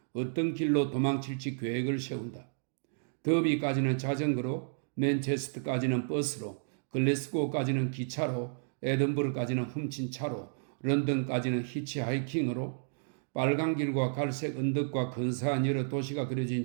어떤 길로 도망칠지 계획을 세운다. 더비까지는 자전거로, 맨체스터까지는 버스로, 글래스고까지는 기차로, 에든버러까지는 훔친 차로, 런던까지는 히치하이킹으로, 빨간 길과 갈색 언덕과 근사한 여러 도시가 그려진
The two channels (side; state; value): left; silent; digital silence